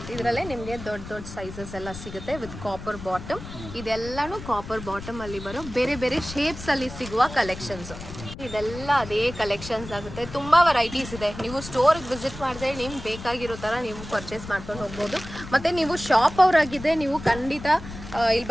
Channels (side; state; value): left; noise; rumble, 12 dB below the sound